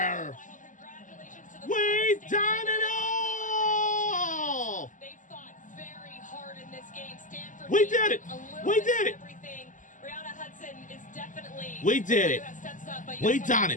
We done it all. They fought very hard in this game. Stanford. We did it. We did it. Everything. Brianna Hudson is definitely. We did it. We done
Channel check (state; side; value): late; right; 0.37 ms